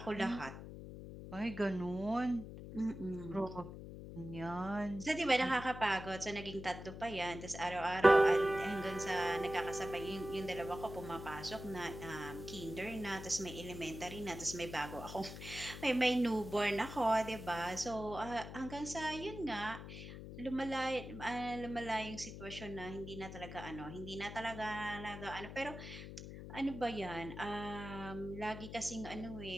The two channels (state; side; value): noise; left; hum, 10 dB below the sound